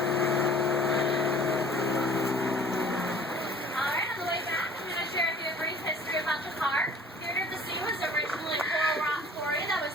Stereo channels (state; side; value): normal; both; correlation 0.50